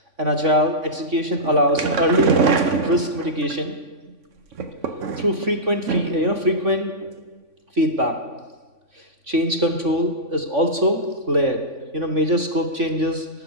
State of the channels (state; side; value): late; left; 3.5 ms